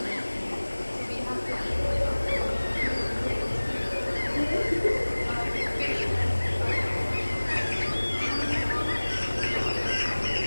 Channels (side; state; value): both; inverted; correlation -1.00